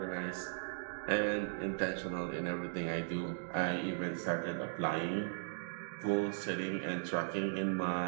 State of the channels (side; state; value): left; silent; digital silence